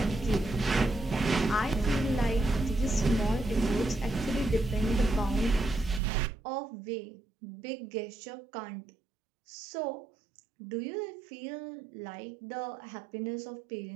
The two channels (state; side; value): drops out; left; at 6.0 s